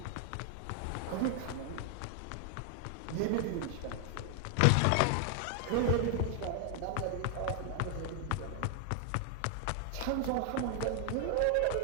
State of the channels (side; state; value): both; different; correlation 0.00